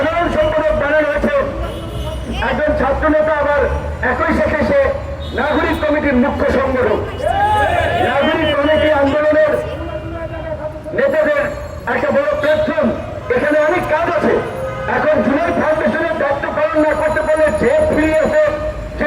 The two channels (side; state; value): both; identical; correlation 1.00